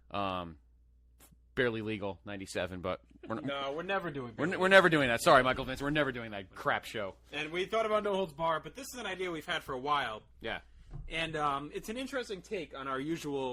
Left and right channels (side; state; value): both; identical; correlation 1.00